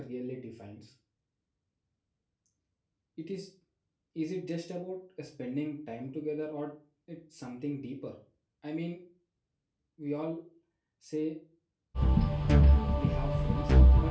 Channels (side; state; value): both; identical; correlation 1.00